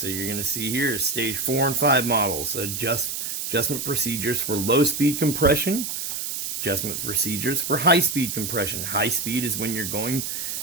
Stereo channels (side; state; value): right; noise; hiss, 4 dB below the sound